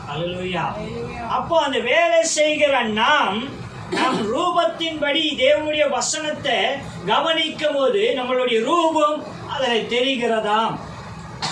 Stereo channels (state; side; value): identical; both; correlation 1.00